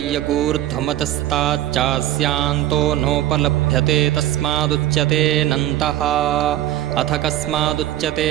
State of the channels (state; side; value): quieter; left; 13.6 dB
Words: नोपलभ्यते तस्मादुच्यतेऽनन्तः। अथ कस्मादुच्यते